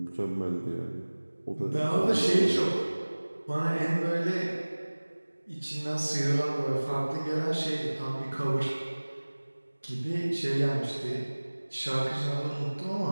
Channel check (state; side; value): inverted; both; correlation -1.00